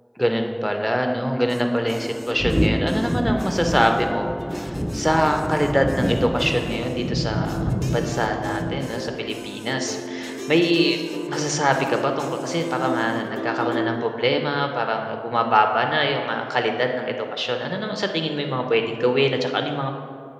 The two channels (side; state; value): both; identical; correlation 1.00